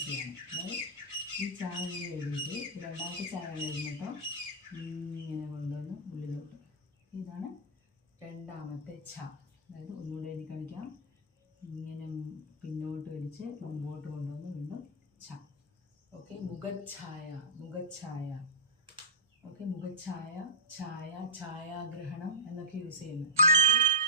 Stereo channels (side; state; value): both; normal; correlation -0.13